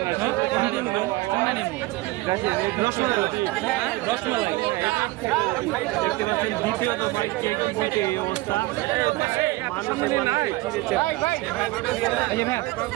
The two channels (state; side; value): quieter; left; 20.2 dB